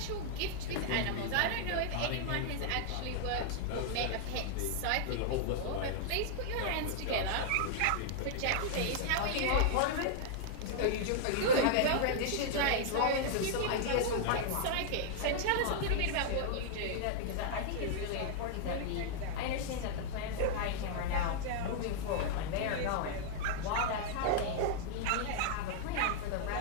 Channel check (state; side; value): different; both; correlation -0.01